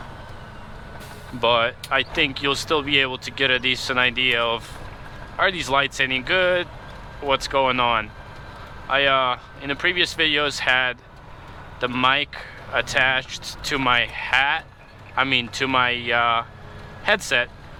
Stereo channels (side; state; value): both; identical; correlation 1.00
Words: But I think you'll still be able to get a decent idea of, are these lights any good? What's going on? I in the previous videos had the mic attached to my to my headset,